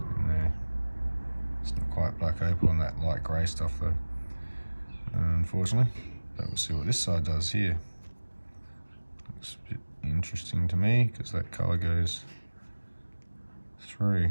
in there. It's not quite black opal on that light grey stuff though, unfortunately. But we'll see what this side does here. Looks a bit interesting to me because that colour goes through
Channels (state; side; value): inverted; both; correlation -1.00